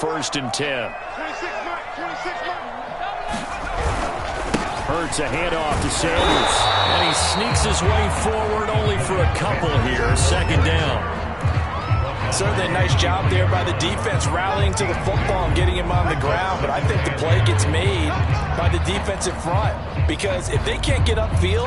and 10. Hurts a handoff to Sanders. And he sneaks his way forward only for a couple here. 2nd down. Certainly a nice job there by the defense rallying to the football and getting him on the ground. But I think the play gets made by the defensive front. Because if they can't get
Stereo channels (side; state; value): both; identical; correlation 1.00